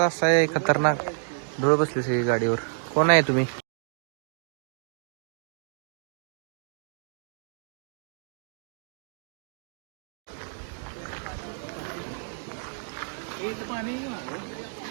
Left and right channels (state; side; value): silent; left; 58 dB below the other